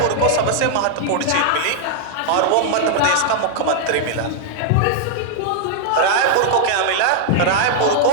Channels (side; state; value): both; different; correlation -0.01